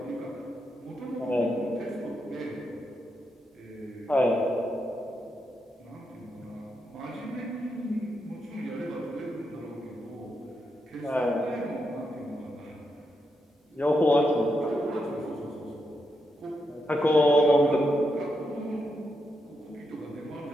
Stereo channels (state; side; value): normal; both; correlation 0.83